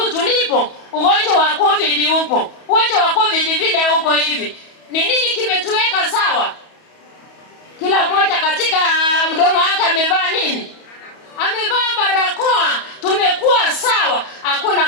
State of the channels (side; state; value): right; late; 31 ms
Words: tulipo, ugonjwa wa COVID upo. Ugonjwa wa COVID vile uko hivi. Ni nini kimetuweka sawa? Kila mmoja katika mdomo wake amevaa nini? Amevaa barakoa. Tumekuwa sawa. Hakuna